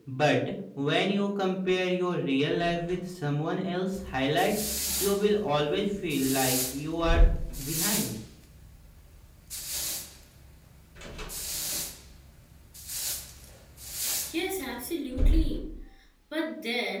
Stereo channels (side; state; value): both; identical; correlation 1.00